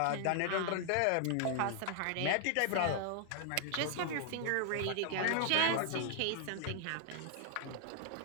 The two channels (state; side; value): different; both; correlation 0.00